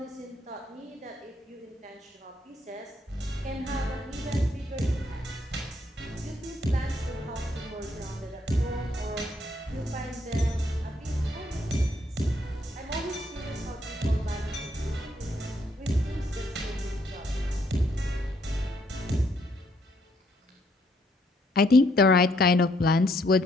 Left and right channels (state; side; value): normal; both; correlation 0.71